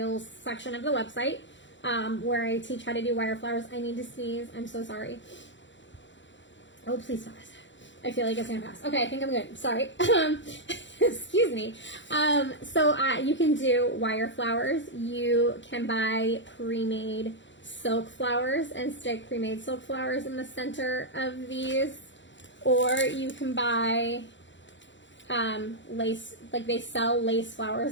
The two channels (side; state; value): right; late; 0.54 ms